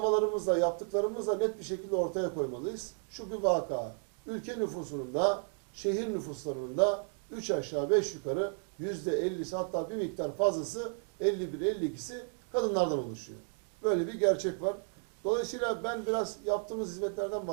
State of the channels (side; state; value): left; silent; 56 dB below the other